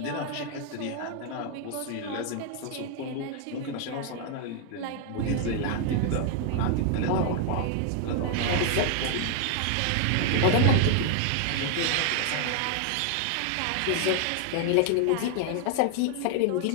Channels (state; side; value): different; both; correlation 0.00